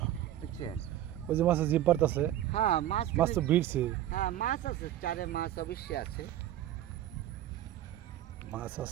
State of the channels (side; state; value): left; quieter; 12.6 dB